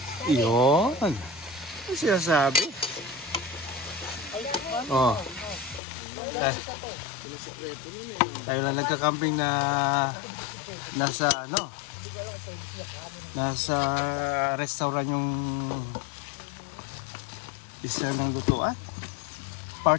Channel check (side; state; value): right; drops out; at 5.8 s